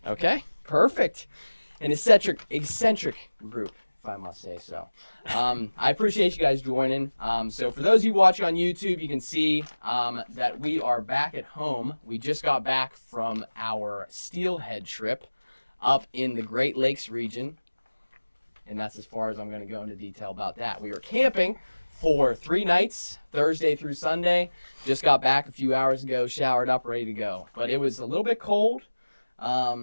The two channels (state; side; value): inverted; both; correlation -1.00